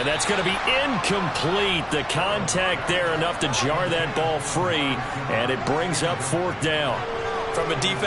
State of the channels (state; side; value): identical; both; correlation 1.00